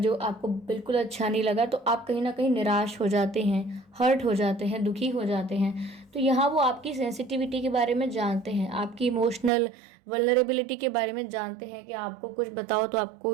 आपको बिल्कुल अच्छा नहीं लगा, तो आप कहीं ना कहीं निराश हो जाते हैं, हर्ट हो जाते हैं, दुखी हो जाते हैं। तो यहाँ वो आपकी सेंसिटिविटी के बारे में जानते हैं, आपकी इमोशनल वल्नरेबिलिटी के बारे में जानते हैं कि आपको कुछ बताओ तो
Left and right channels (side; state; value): left; drops out; at 9.5 s